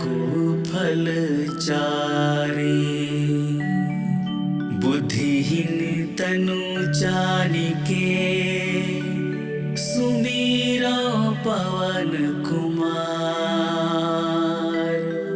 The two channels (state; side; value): identical; both; correlation 1.00